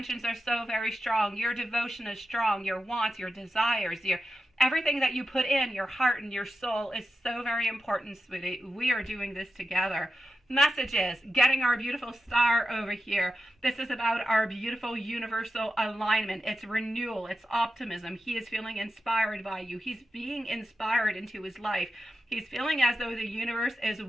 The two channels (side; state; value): both; normal; correlation 0.90